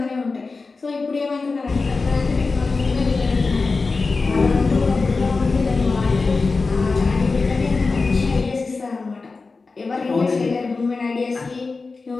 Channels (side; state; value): right; quieter; 4.1 dB